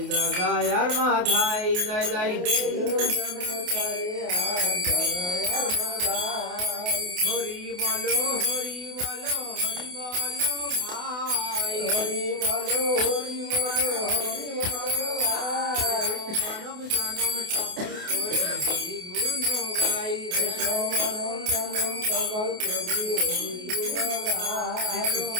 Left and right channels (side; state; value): left; late; 28 ms